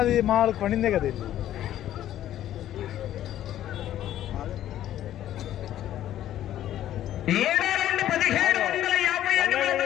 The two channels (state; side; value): quieter; right; 12.3 dB